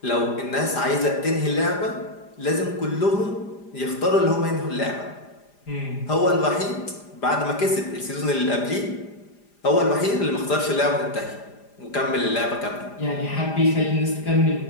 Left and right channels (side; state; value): right; late; 4.9 ms